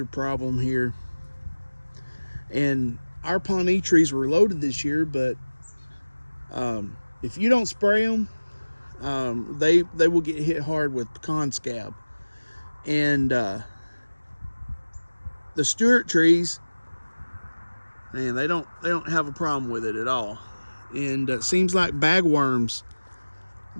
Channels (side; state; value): both; inverted; correlation -1.00